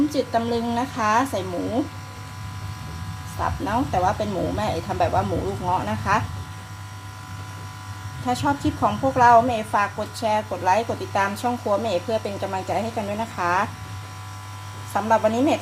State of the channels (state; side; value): identical; both; correlation 1.00